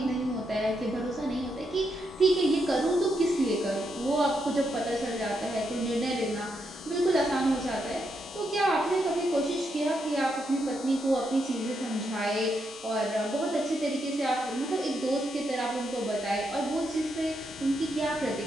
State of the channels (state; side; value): normal; both; correlation 0.81